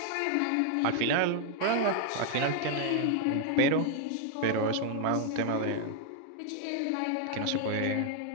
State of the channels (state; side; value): different; both; correlation 0.00